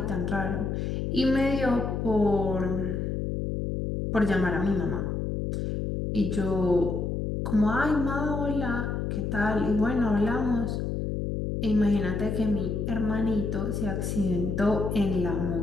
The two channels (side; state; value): left; noise; hum, 1 dB below the sound